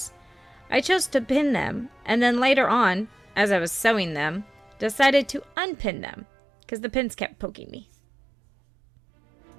I chose to pin them, and then later on, as I was sewing them, decided to unpin them, because the pins kept poking me.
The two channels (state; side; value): drops out; left; at 5.6 s